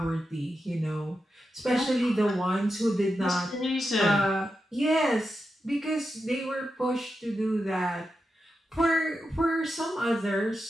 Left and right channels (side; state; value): both; normal; correlation 0.88